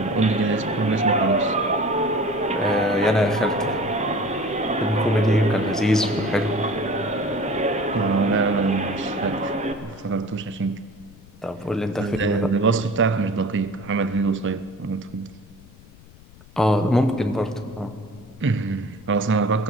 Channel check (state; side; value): noise; left; rumble, 23 dB below the sound